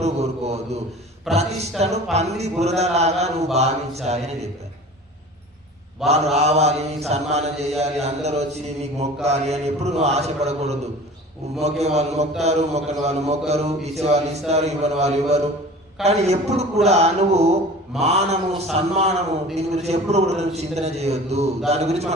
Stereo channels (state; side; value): normal; both; correlation 0.41